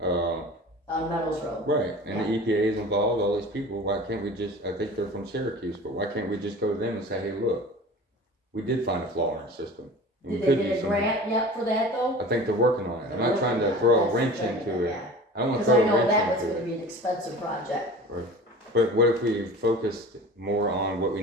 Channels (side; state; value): both; normal; correlation 0.38